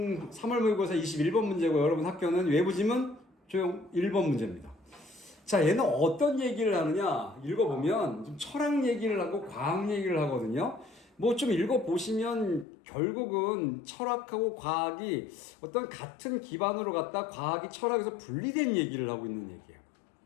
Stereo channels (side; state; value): right; drops out; at 12.7 s